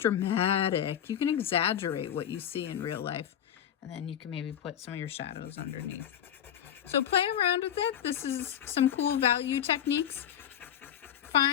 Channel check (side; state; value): right; quieter; 9.9 dB